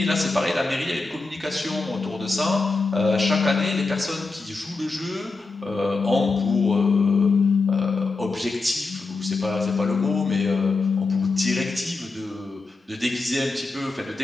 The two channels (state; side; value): quieter; right; 3.8 dB